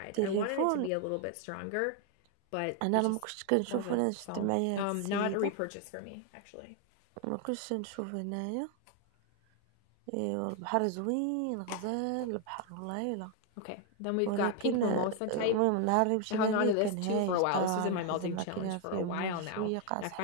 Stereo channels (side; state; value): both; different; correlation 0.01